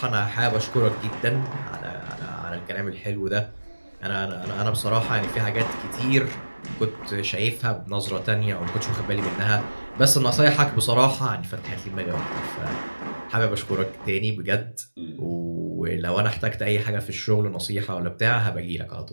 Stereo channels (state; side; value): inverted; both; correlation -1.00